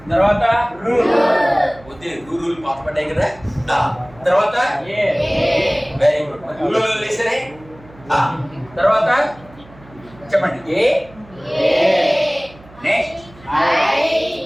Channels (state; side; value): noise; right; hum, 23 dB below the sound